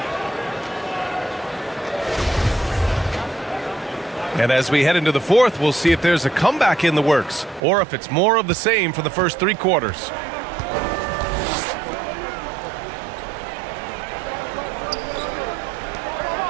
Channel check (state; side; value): drops out; left; at 7.6 s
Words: And as we head into the fourth, we'll see if there's a comeback in the works or if it's more of the same for the first 3 quarters.